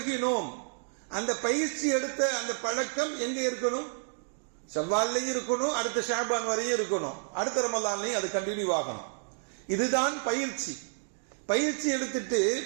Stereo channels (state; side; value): silent; left; digital silence